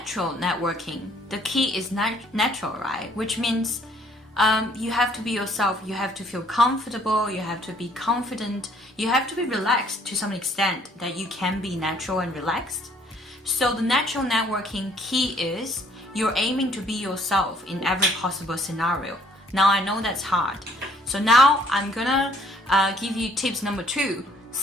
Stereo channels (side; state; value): both; normal; correlation 0.62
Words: networking, the key is natural, right? Which means you have to be yourself. You have to feel comfortable. You have to be confident. You have to be relaxed to some extent that you can be natural and relaxed. So the natural networking key is you're aiming to be yourself in every possible scenario. Now I know that's hard. So now I'm gonna give you tips number 2.